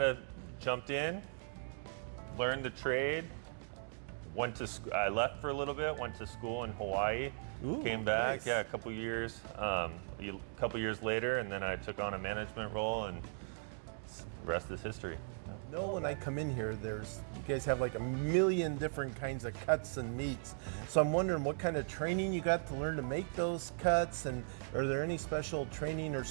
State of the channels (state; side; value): silent; left; digital silence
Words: of jumped in, learned the trade, I left for a little bit, went to school in Hawaii, came back, nice. a couple years later, and then I took on a management role, and the rest is history. No, when I come in here, you guys have like a million different kinds of cuts and meats. So I'm wondering what kind of training you got to learn to make those cuts, and are there any special training or